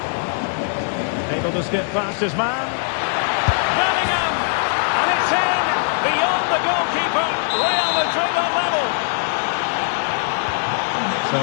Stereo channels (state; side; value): silent; right; 56 dB below the other